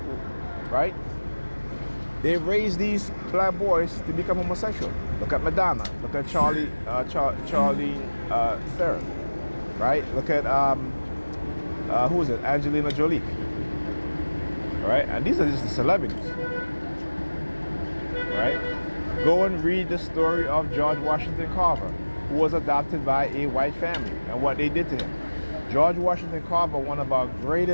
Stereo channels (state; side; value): inverted; both; correlation -1.00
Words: right? They raise these black boys to become homosexual. Look at Madonna. Look at Charlie Theron, right? Look at who is it? Angelina Jolie, right? And these are just the celebrities, right? Go and read the story of George Washington Carver, who was adopted by a white family, and what they did to him. George Washington Carver, one of our